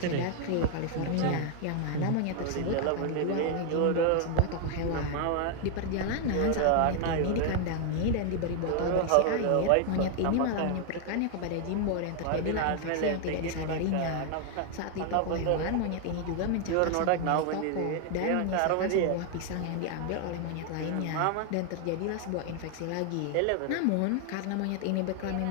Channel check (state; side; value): different; both; correlation 0.00